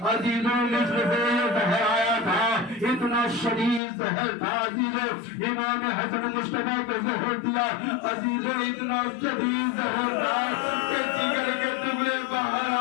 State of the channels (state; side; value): drops out; right; at 3.8 s